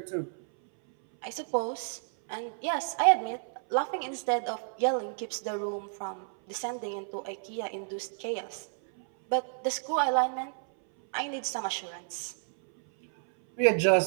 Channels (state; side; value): silent; left; 57 dB below the other